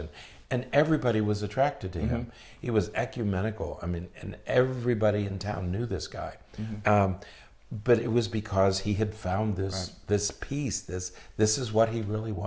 And everybody was attracted to him. He was ecumenical. I mean, and everybody in town knew this guy. But it was because he had found this peace. This is what he really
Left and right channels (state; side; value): identical; both; correlation 1.00